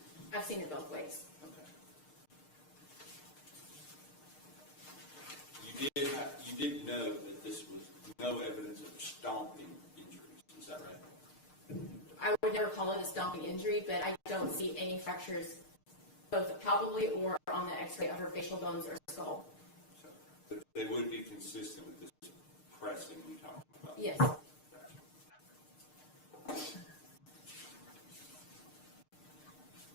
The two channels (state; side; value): late; right; 6.6 ms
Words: I've seen it both ways. Okay. You did know that this was no evidence of stomping injuries. Is that right? I would never call it a stomping injury, but I don't see any fractures both palpably or on the x-ray of her facial bones or skull. So, but they would be consistent with this pressing we talked about? Yes. Gotcha.